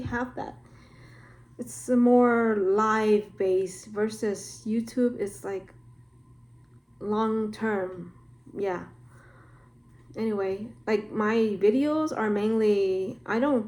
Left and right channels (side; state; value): both; identical; correlation 1.00